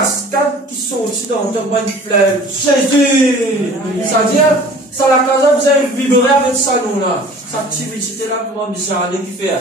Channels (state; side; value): normal; both; correlation 0.46